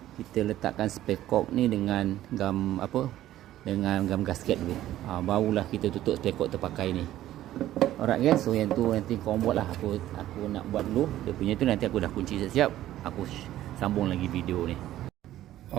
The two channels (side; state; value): left; quieter; 13.6 dB